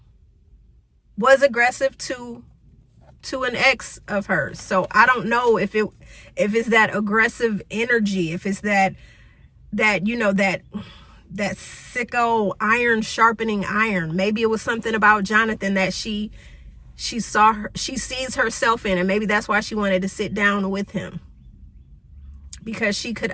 was aggressive to an ex of hers. So I don't know if it's that aggressive energy, if it's that you know, that sicko iron sharpening iron. Maybe it was something about Jonathan that she sees herself in, and maybe that's why she wanted to sit down with him, because she could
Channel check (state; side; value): identical; both; correlation 1.00